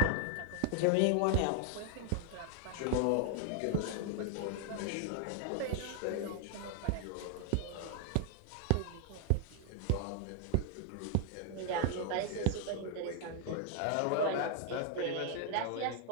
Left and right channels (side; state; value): both; different; correlation 0.00